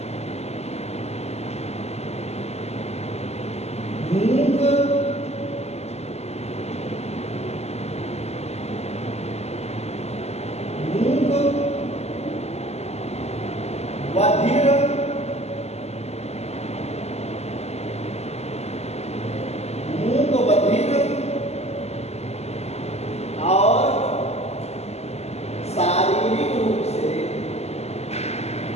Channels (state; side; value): late; right; 0.31 ms